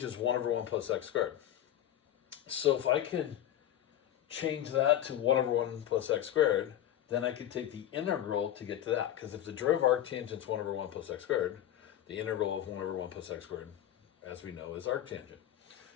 is 1 over 1 plus x squared. So if I can change that to 1 over 1 plus x squared, then I could take the integral to get to that. Because if the derivative of arctangent is 1 over 1 plus x squared, the integral of 1 over 1 plus x squared, as we know, is arctangent.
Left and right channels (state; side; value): quieter; right; 11.7 dB